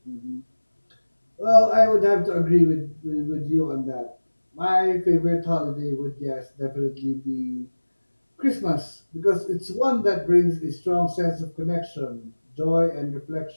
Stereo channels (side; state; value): both; inverted; correlation -1.00